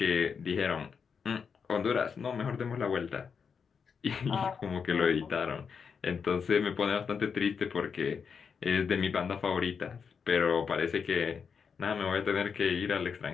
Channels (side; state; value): right; quieter; 6.2 dB